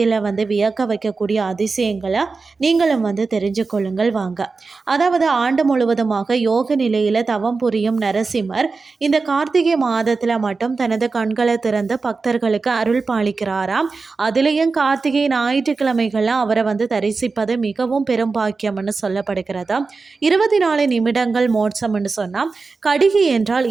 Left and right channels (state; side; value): quieter; left; 4.2 dB